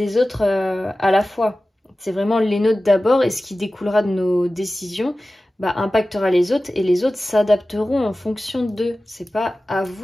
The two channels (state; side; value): normal; both; correlation 0.96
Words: autres à la fois. C'est vraiment les nôtres d'abord et ce qui découlera de nos décisions impactera les autres et les autres s'adapteront en fonction d'eux. C'est pas à